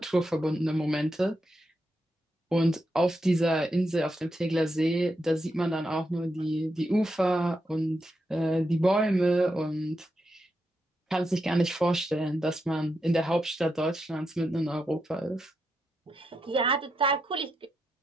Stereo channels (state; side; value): normal; both; correlation 0.84